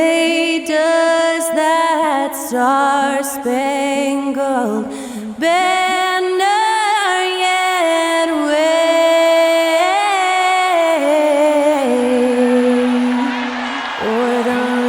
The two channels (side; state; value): both; identical; correlation 1.00